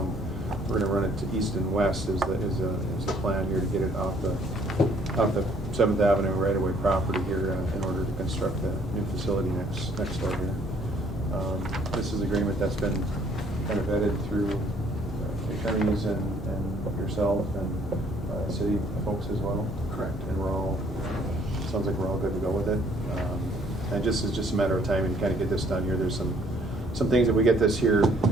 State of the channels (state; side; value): normal; both; correlation 0.62